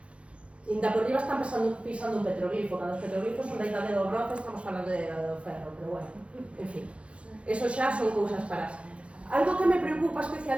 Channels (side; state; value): left; late; 0.060 ms